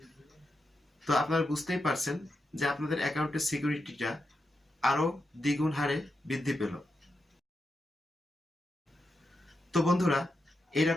তো আপনারা বুঝতেই পারছেন যে আপনাদের অ্যাকাউন্টের সিকিউরিটিটা আরো দ্বিগুণ হারে বৃদ্ধি পেল। তো বন্ধুরা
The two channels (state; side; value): normal; both; correlation 0.87